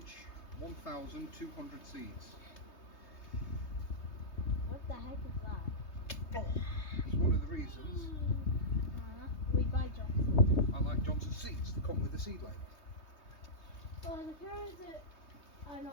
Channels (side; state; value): right; late; 3.2 ms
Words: 1,200 seeds. What the heck is that? It's one of the reasons We buy Johnson. I like Johnson seeds. They come with a seed label. Oh, the carrots are